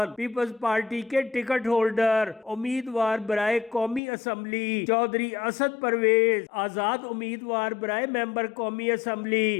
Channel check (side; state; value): right; drops out; at 4.0 s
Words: پیپلز پارٹی کے ٹکٹ ہولڈر امیدوار برائے قومی اسمبلی چودھری اسد پرویز، آزاد امیدوار برائے ممبر قومی